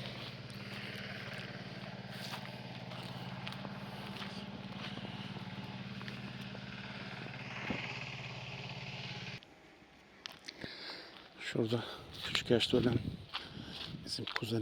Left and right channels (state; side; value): identical; both; correlation 1.00